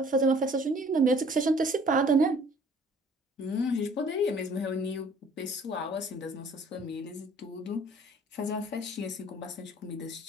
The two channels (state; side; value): normal; both; correlation 0.55